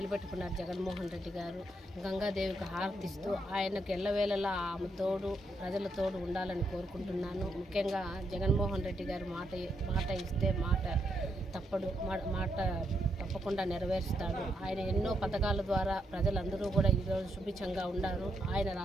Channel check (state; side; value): normal; both; correlation 0.79